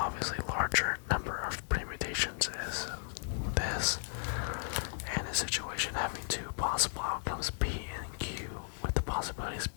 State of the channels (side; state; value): right; silent; digital silence